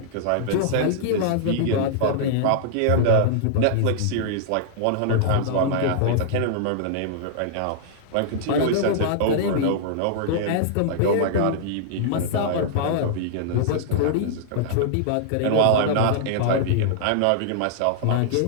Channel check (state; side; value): different; both; correlation -0.01